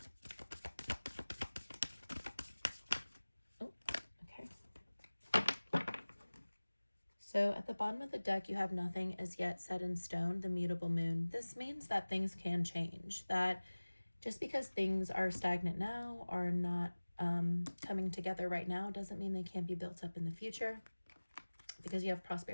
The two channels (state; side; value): inverted; both; correlation -1.00